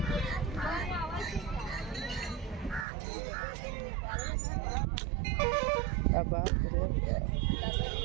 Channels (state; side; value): drops out; left; at 2.9 s